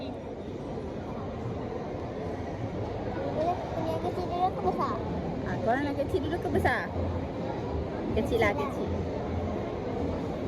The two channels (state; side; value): identical; both; correlation 1.00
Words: Punya kecil dulu ke besar? Korang nak kecil dulu ke besar? Kecil lah, kecil.